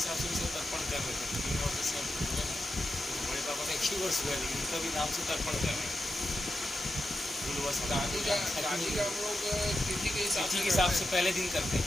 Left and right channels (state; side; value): normal; both; correlation 0.88